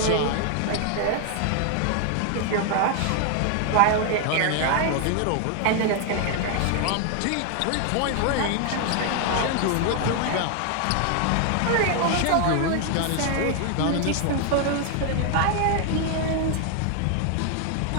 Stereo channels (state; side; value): different; both; correlation 0.00